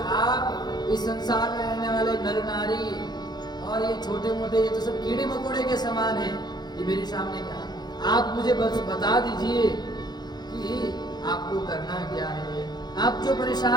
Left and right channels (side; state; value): right; late; 0.20 ms